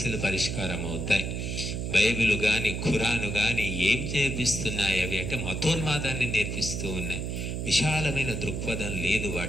పరిష్కారం అవుతాయి. బైబిల్ కానీ ఖురాను కానీ ఏం నేర్పిస్తున్నాయి? అవి అంటే మతోన్మాదాన్ని నేర్పిస్తూ ఉన్నాయి. విశాలమైన దృక్పథం లేదు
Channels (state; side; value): noise; right; hum, 3 dB below the sound